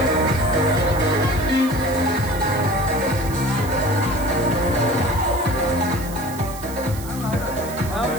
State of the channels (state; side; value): noise; right; hiss, 15 dB below the sound